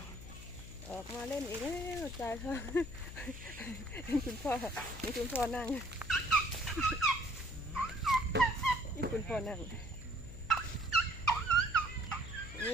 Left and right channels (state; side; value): noise; left; hum, 13 dB below the sound